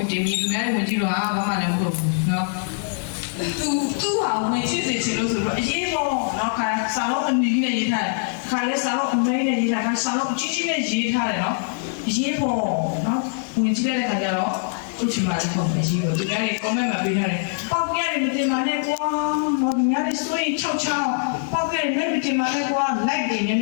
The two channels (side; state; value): right; silent; digital silence